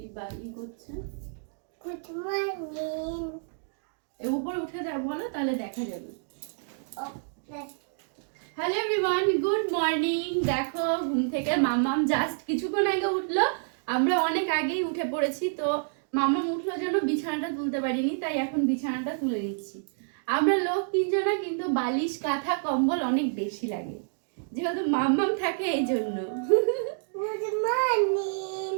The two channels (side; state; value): left; silent; digital silence